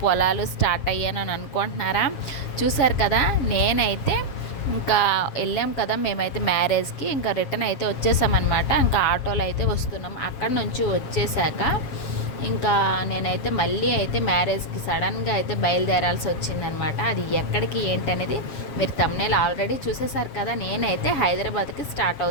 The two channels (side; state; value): right; late; 7.4 ms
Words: పొలాలు స్టార్ట్ అయ్యాను అని అనుకుంటున్నారా? చూసారు కదా, నేనైతే ఇంకా వెళ్ళాం కదా మేమైతే మ్యారేజ్కి, ఇంకా రిటర్న్ అయితే వచ్చేసామన్నమాట. ఇంకా ఆటోలో అయితే వస్తున్నాం. అక్కడ నుంచి వచ్చేసాక ఇంకా నేనైతే మళ్ళీ అయితే మ్యారేజ్కి సడన్గా అయితే బయలుదేరాల్సి వచ్చిందనమాట. అది ఎక్కడికి ఏంటనేది మీరు థంబ్నెయిల్ ఆల్రెడీ చూసేసారు కదా. నేనైతే హైదరాబాద్కి స్టార్ట్